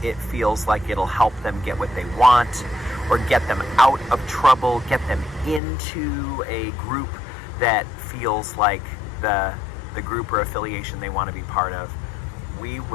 it feels like it'll help them get what they want, or get them out of trouble, get them into a group that feels like the group or affiliation they want to be part of. We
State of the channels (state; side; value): drops out; right; at 5.6 s